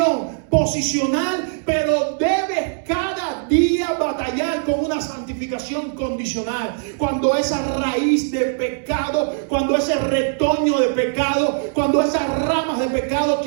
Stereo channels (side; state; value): left; silent; digital silence